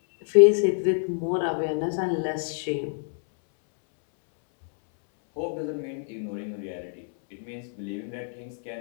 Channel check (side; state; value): right; silent; 61 dB below the other